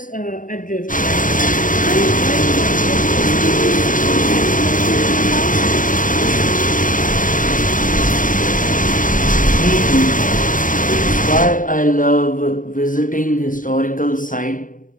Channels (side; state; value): right; late; 0.39 ms